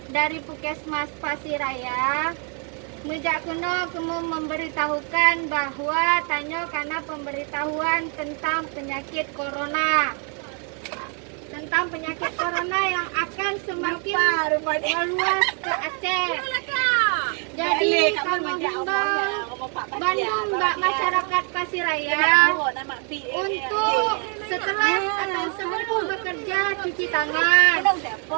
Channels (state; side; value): quieter; left; 39.5 dB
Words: dari Puskesmas Pasiraya, mejak kuno kamu memberitahukan bahwa tanya karena pemberitahuan tentang penyakit corona. Tentang penyakit corona yang akan semakin meluas ke Aceh. Jadi kamu himbau Bandung Mbak masyarakat Pasiraya untuk setelah atau sebelum bekerja cuci tangan.